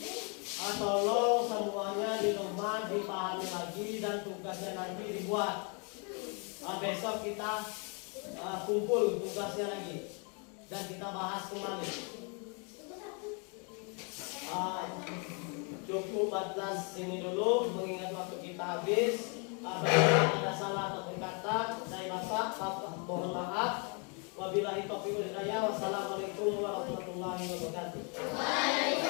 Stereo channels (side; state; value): right; quieter; 36.0 dB